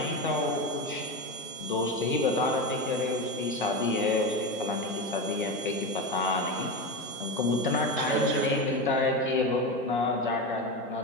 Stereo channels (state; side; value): normal; both; correlation 0.19